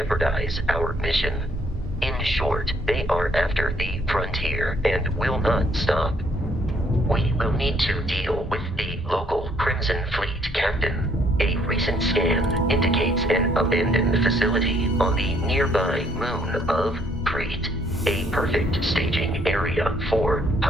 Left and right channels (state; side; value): normal; both; correlation 0.66